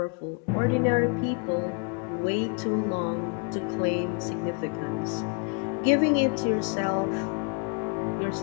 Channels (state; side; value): quieter; right; 37.6 dB